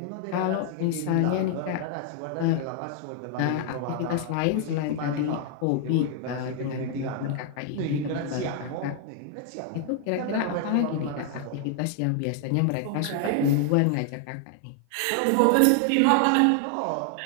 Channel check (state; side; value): different; both; correlation 0.00